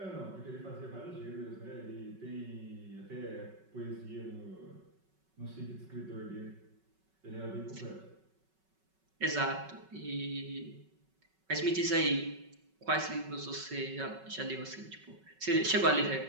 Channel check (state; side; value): late; left; 5.3 ms